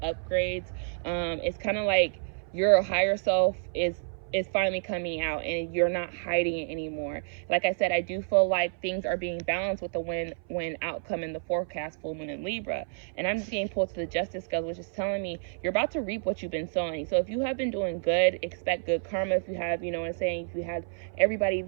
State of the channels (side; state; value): left; silent; 58 dB below the other